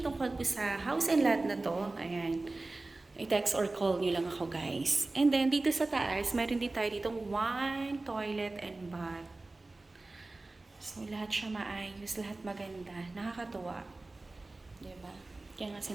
po sa house and lot na to, ayan, i-text or call nyo lang ako guys. And then dito sa taas, meron din tayo ditong one toilet and bath. So lahat siya maayos, lahat maganda, nakakatuwa. Diba? Kaya nga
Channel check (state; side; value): quieter; left; 3.1 dB